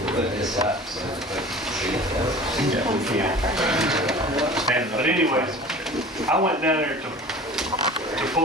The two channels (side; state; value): both; normal; correlation 0.41